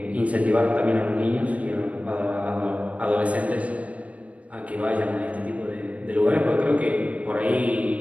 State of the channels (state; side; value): late; left; 0.066 ms